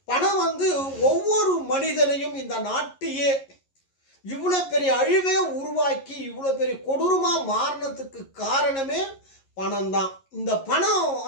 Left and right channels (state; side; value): late; right; 11 ms